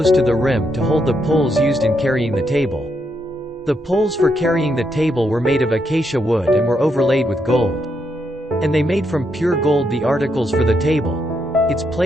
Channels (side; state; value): both; normal; correlation 0.79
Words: to the rim to hold the poles used in carrying the table. The poles for carrying the table were made of acacia wood and were overlaid with gold. And they made from pure gold the articles for the table, its